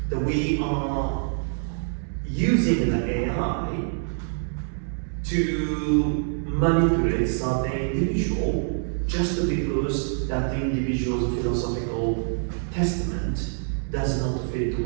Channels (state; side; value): silent; left; digital silence